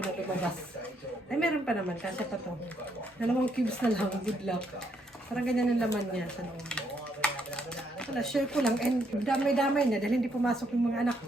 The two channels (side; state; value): both; normal; correlation 0.73